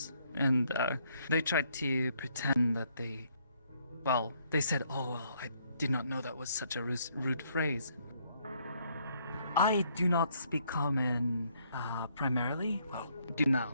And they tried to pretend that they said, oh, well, I did not know that was such a rude phrase. I do not speak common primarily. Well, do now,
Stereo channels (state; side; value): inverted; both; correlation -0.69